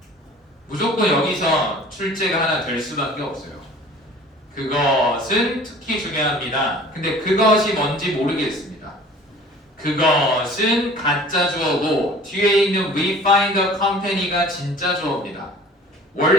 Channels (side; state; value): both; normal; correlation 0.47